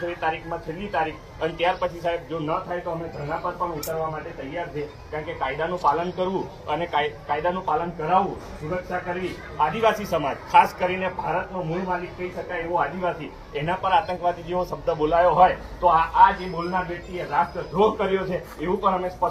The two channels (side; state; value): both; identical; correlation 1.00